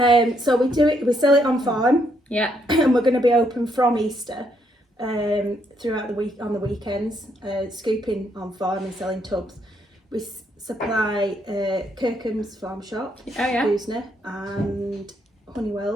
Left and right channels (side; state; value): both; normal; correlation 0.74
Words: So we sell it on farm, Yeah. and we're going to be open from Easter throughout the week on the weekends, scooping on farm and selling tubs. We supply Kirkham's Farm Shop, Oh, yeah. Boosner, and